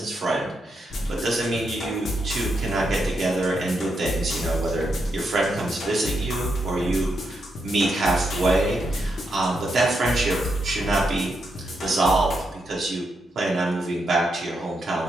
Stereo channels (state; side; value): normal; both; correlation 0.82